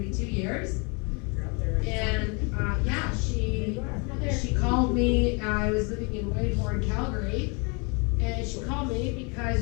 years. And yeah, she called me. I was living in Whitehorn, Calgary, and she called me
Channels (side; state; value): right; quieter; 32.6 dB